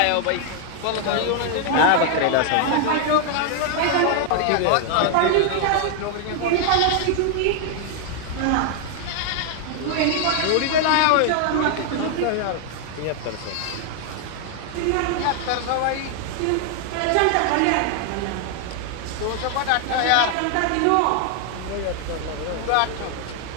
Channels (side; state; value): both; different; correlation 0.00